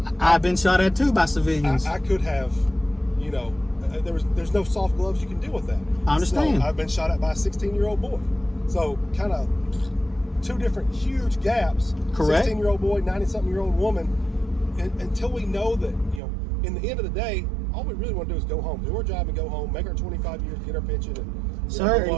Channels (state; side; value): drops out; left; at 16.2 s